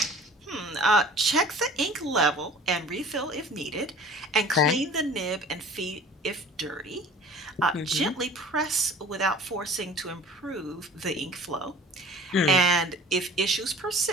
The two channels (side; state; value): both; normal; correlation 0.45